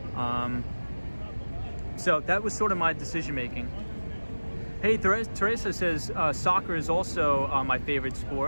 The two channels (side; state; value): both; inverted; correlation -1.00